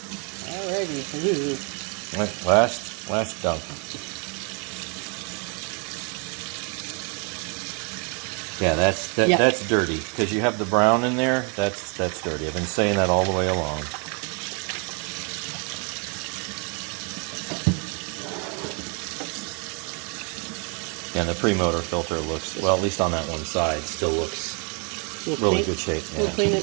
Alrighty. Right, last dump. Yeah, Yeah. that's dirty because you have the brown in there. That's dirty. I've been saying that all the way along. And the pre-motor filter looks, well, at least on that one side, still looks really good shape. We'll Yeah. clean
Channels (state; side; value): quieter; left; 36.4 dB